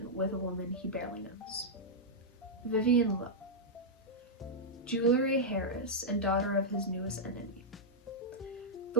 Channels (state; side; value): normal; both; correlation -0.06